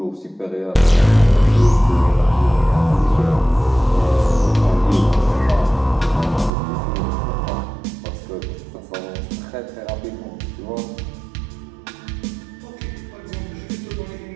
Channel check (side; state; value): left; drops out; at 6.5 s